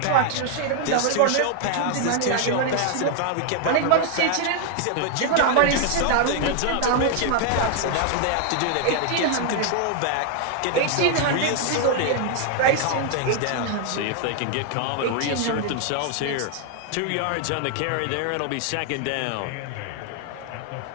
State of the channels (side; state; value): both; different; correlation 0.00